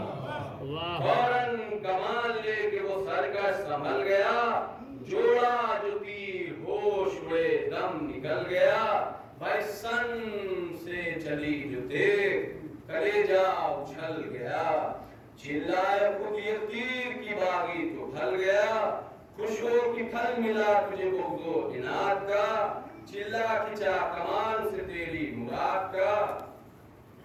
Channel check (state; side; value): identical; both; correlation 1.00